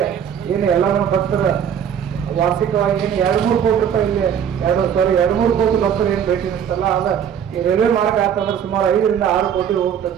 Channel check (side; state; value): left; quieter; 8.5 dB